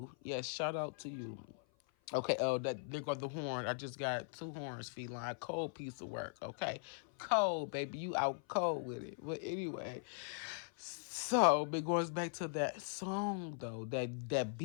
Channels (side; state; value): right; silent; 51 dB below the other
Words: Yes, shout out to you. Okay, oh, that there go the horn. I just got two horns, feline. Cold piece of work. Okay, cold, baby. You out cold with it. But anyway, so it goes back to that song though. That